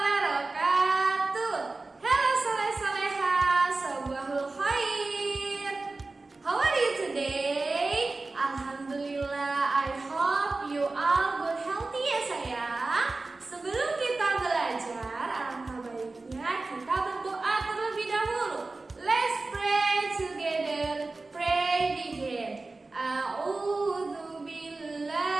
Halo soleh-soleha, sabahul khair. How are you today? Alhamdulillah, I hope you all good healthy ya sayang. Sebelum kita belajar, alangkah baiknya kita berdoa terlebih dahulu. Let's pray together. Pray begin. A'udzu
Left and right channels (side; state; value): left; quieter; 3.4 dB